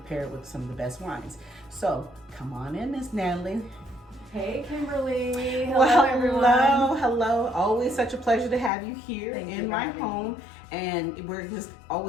it with some of the best wines. So, come on in, Miss Natalie. Hey, Kimberly. Hello, Well, everyone. hello. Always such a pleasure to have you here in my home. And we're just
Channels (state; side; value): drops out; right; at 8.7 s